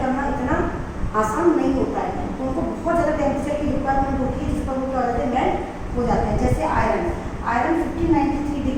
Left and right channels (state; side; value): identical; both; correlation 1.00